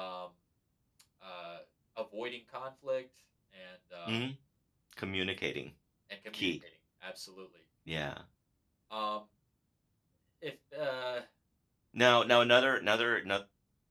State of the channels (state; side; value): identical; both; correlation 1.00